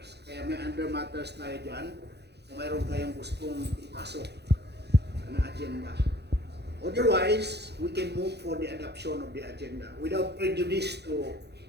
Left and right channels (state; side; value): late; left; 0.48 ms